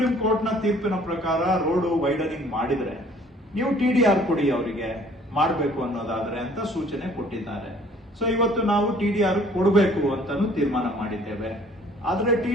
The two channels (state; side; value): normal; both; correlation 0.56